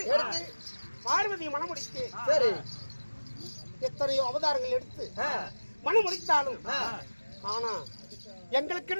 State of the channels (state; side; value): inverted; both; correlation -1.00